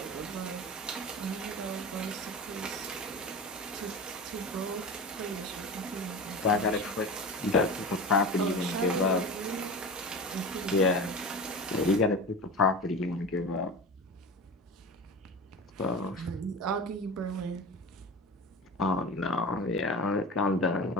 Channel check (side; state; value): both; normal; correlation 0.30